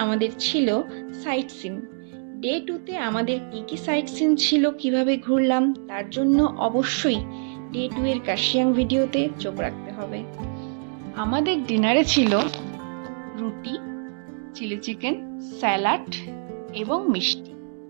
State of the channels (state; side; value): silent; left; digital silence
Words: আমাদের ছিল সাইট সিন। ডে 2তে আমাদের কি কি সাইট সিন ছিল, কিভাবে ঘুরলাম, তার জন্য অবশ্যই ডে 2 এর কার্শিয়াং ভিডিওতে চোখ রাখতে হবে। আমাদের ডিনারে ছিল রুটি, চিলি চিকেন, স্যালাড এবং মিষ্টি।